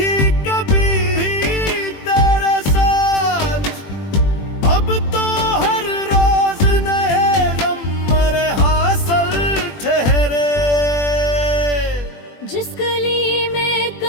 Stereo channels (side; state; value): right; late; 21 ms